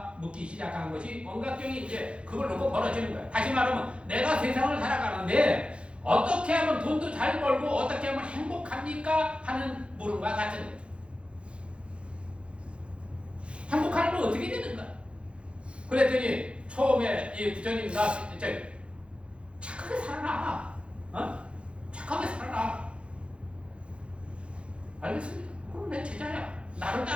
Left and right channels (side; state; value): left; late; 0.058 ms